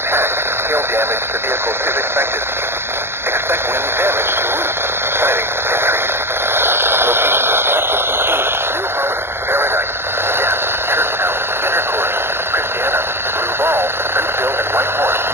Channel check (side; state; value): left; late; 0.11 ms